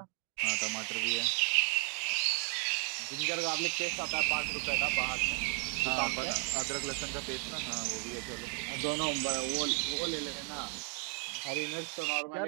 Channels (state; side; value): quieter; left; 34.1 dB